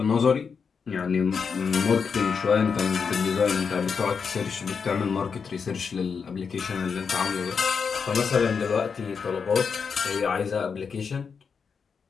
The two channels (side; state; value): right; quieter; 5.9 dB